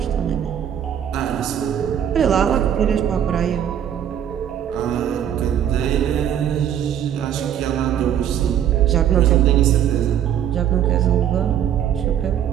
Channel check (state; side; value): quieter; left; 9.7 dB